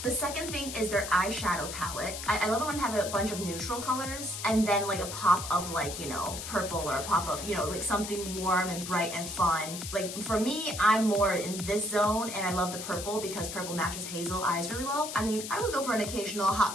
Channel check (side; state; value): left; noise; hiss, 8 dB below the sound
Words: The second thing is their eyeshadow palette. I love it when they have a bunch of neutral colors and then like a pop of like, you know, purple or a pop of, you know, like something warm and bright and fun. Like for me, I'm more in this zone and I love the purple because purple matches hazel eyes really well. I mean, I would go for an occasional hot